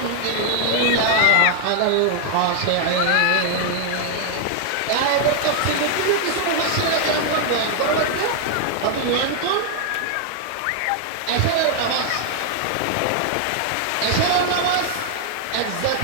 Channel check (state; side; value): different; both; correlation 0.00